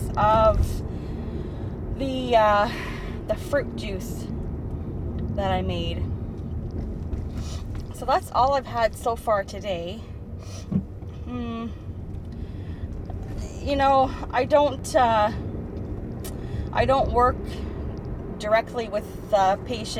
of the fruit juice that I made. So that's all I've had so far today. You know, I don't work directly with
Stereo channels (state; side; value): identical; both; correlation 1.00